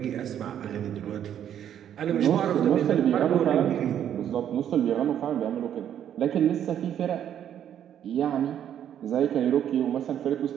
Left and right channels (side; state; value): left; quieter; 9.9 dB